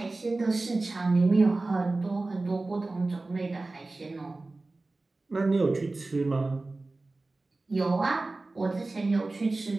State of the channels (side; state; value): left; quieter; 3.2 dB